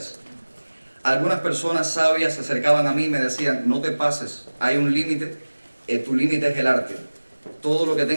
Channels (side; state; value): both; inverted; correlation -1.00